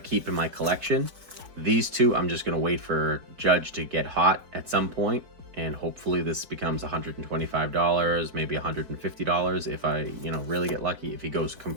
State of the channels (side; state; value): left; late; 4.8 ms